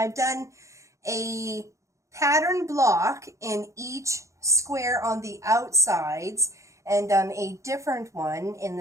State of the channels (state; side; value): late; left; 0.15 ms